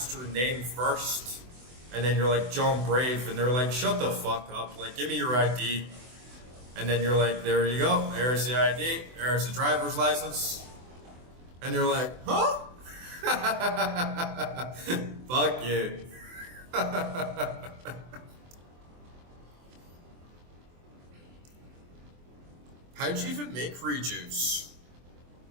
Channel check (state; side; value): late; left; 24 ms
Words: your name first, and then you're like, John Brave, and they're like, shut the fuck up, like, give me your ID. And then you're like, there you go, there's the ID, there's the driver's license. And they're like, huh? Fuck you. How'd you even make rejuice?